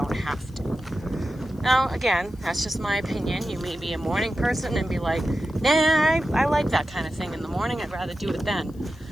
have to. Now, again, that's just my opinion. You may be a morning person and be like, nah, I like that kind of thing in the morning. I'd rather do it then.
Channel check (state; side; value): noise; left; hiss, 29 dB below the sound